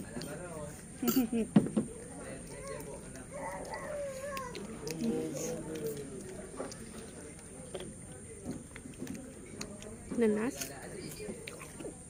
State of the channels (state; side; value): identical; both; correlation 1.00